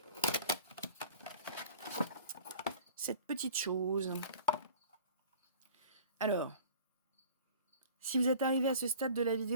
cette petite chose. Alors, si vous êtes arrivé à ce stade de la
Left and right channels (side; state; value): both; inverted; correlation -0.44